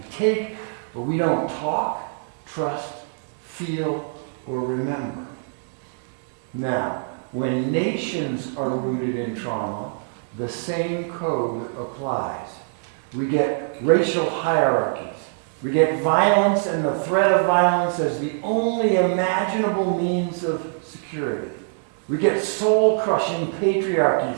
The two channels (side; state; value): left; silent; digital silence